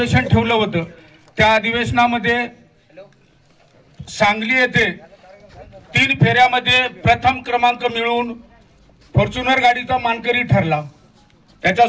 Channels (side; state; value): both; identical; correlation 1.00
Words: ठेवलं होतं. त्या अधिवेशनामध्ये सांगली येथे 3 फेऱ्यामध्ये प्रथम क्रमांक मिळवून फॉर्च्युनर गाडीचा मानकरी ठरला.